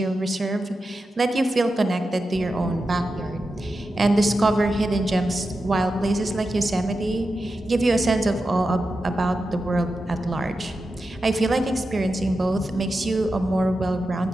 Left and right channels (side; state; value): both; normal; correlation 0.90